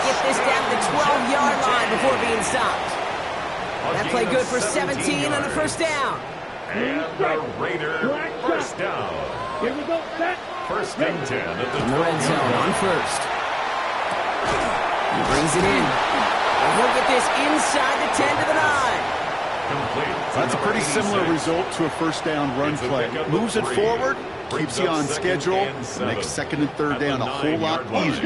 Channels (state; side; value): identical; both; correlation 1.00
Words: get this down to the 12-yard line before being stopped. That play good for 17 on the first down. And the Raider first down. Here we go, set. First and 10 at in the red zone on first. He brings it in. And he'll get this inside the 10 to the 9. That's a pretty similar result to a first down run play. Moves it forward, keeps you on schedule, makes second and third down a whole lot